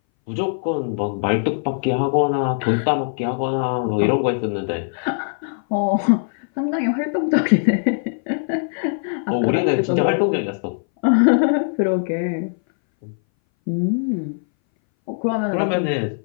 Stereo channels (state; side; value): silent; right; 61 dB below the other